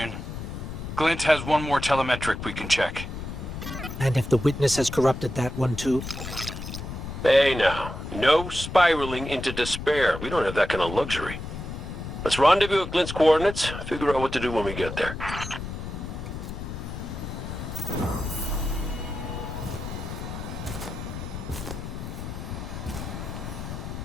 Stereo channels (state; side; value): noise; left; rumble, 7 dB below the sound